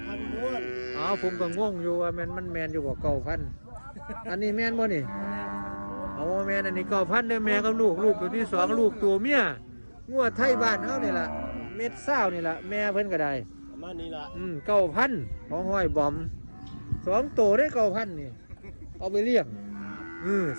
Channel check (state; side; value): inverted; both; correlation -1.00